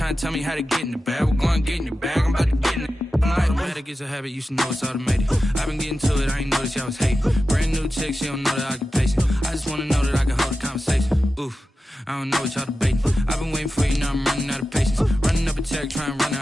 to tell me how to get in the bag. We're going to get in your bag, I'm about to get in it. Automatic is a habit, you should know it's automated. I've been getting to it, I ain't noticed y'all was hating. Brand new chick, she don't know that I can pace it. I just wanna know that I can hold a conversation. Oof, I don't know what y'all debating. I've been waiting for you, now I'm running out of patience. Running up a check, trying to run an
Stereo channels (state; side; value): normal; both; correlation 0.92